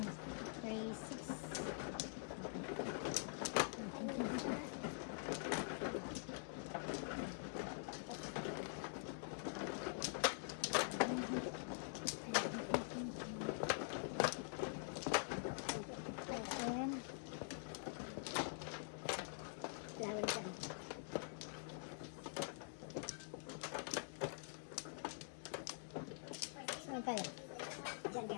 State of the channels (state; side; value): silent; right; digital silence